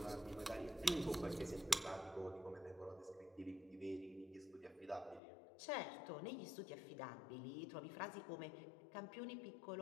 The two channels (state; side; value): drops out; right; at 5.2 s